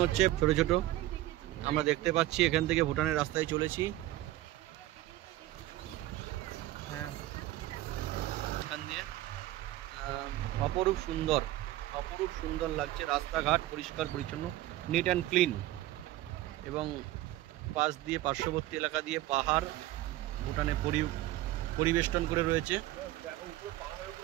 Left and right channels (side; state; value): left; quieter; 15.7 dB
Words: হচ্ছে ছোট ছোট। আমরা দেখতে পাচ্ছি এখান থেকে ভুটানের রাস্তায় চলেছি। হ্যাঁ, এখান দিয়ে অপরূপ সুন্দর লাগছে। রাস্তাঘাট পরিষ্কার পরিচ্ছন্ন, নিট অ্যান্ড ক্লিন, এবং পাশ দিয়ে পার্শ্ববর্তী এলাকা দিয়ে পাহাড় ভুটানে পরিবেষ্টন করে রয়েছে।